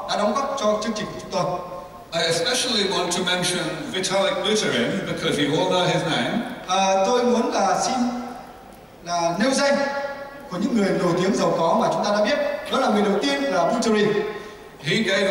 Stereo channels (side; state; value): both; identical; correlation 1.00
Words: đã đóng góp cho chương trình của chúng tôi. I especially want to mention Vitalik Buterin because you all know his name. Tôi muốn xin nêu danh của những người nổi tiếng giàu có mà chúng ta đã biết. Đó là người đầu tiên là Buterin. He